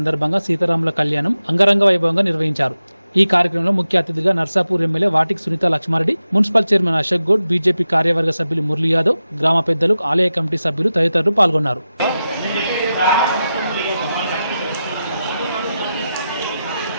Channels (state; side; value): inverted; both; correlation -0.91